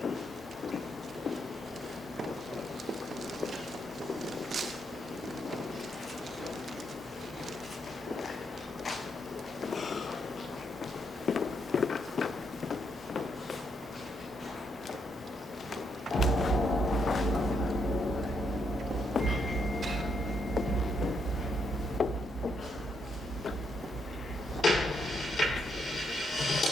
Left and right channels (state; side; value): normal; both; correlation 0.78